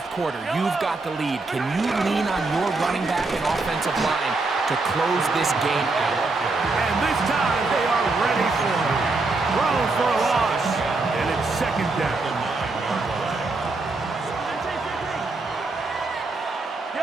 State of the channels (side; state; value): left; quieter; 3.5 dB